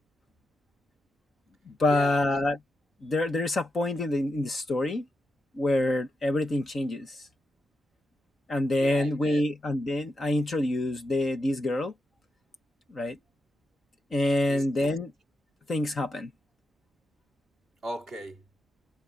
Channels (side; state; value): both; normal; correlation 0.86